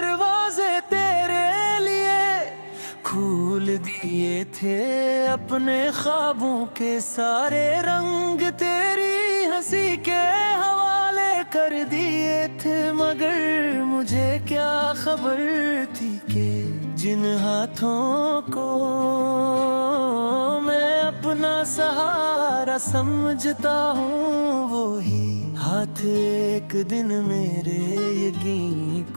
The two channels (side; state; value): both; inverted; correlation -1.00